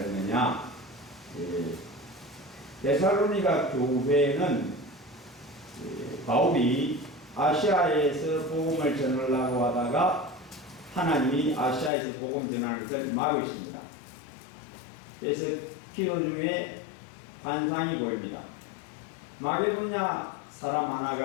데살로니가 교회는 바울이 아시아에서 복음을 전하려고 하다가 하나님이 아시아에서 복음 전하는 것을 막으십니다. 그래서 기도 중에 환상이 보입니다. 마게도냐 사람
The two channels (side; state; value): right; drops out; at 11.9 s